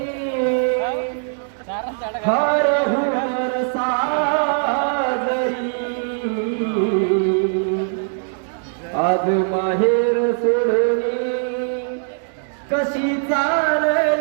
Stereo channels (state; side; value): silent; left; digital silence